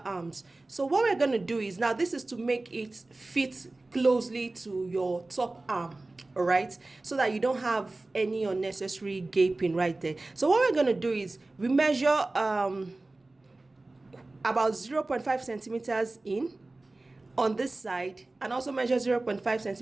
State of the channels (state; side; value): quieter; left; 3.0 dB